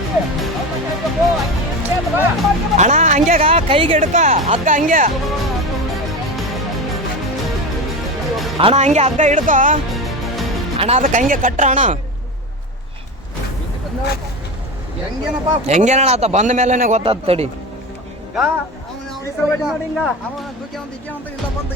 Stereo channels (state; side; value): normal; both; correlation 0.24